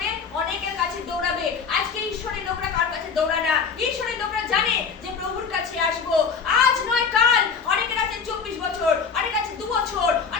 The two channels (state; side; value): quieter; right; 5.9 dB